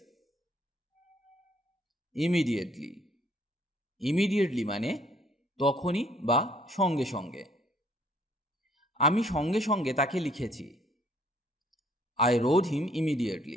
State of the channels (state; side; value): normal; both; correlation 0.62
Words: Immediately. Immediately মানে তখনই বা সঙ্গে সঙ্গে। আমি সঙ্গে সঙ্গে তাকে লিখেছি। I road him